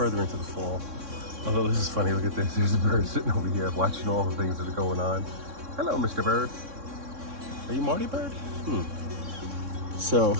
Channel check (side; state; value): left; late; 3.6 ms